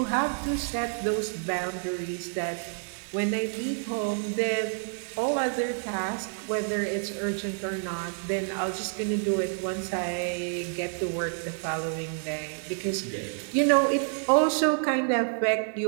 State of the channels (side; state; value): left; silent; 59 dB below the other